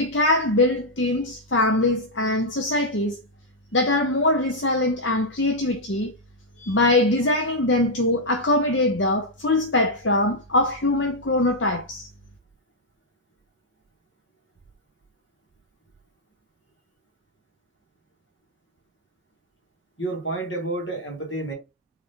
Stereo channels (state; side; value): normal; both; correlation -0.04